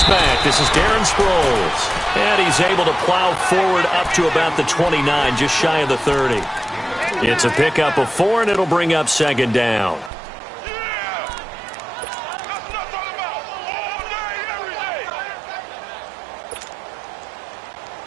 back. This is Darren Sproles. And he's able to plow forward up to about the 29, just shy of the 30. It's a pickup of 4, and it'll bring up second down.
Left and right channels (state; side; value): drops out; left; at 10.1 s